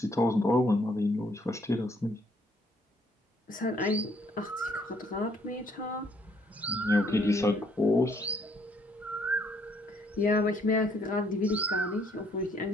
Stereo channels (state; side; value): normal; both; correlation 0.67